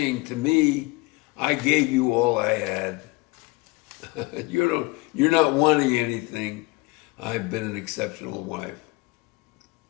to me, I gave you all I had. You're not wanting anything. I've been an exceptional wife.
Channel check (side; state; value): right; quieter; 24.3 dB